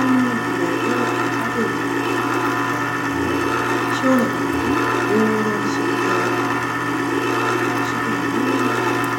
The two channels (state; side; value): identical; both; correlation 1.00